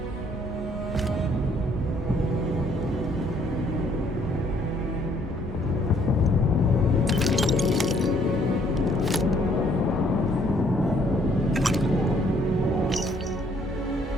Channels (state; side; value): normal; both; correlation 0.65